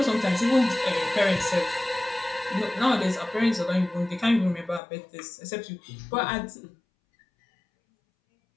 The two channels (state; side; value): drops out; right; at 4.8 s